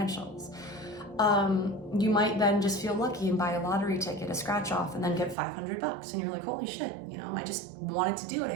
You might then just feel lucky and buy a lottery ticket, a scratch off, and then get $500. And you're like, holy shit, you know, I just wanted to do it.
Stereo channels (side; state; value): left; drops out; at 5.4 s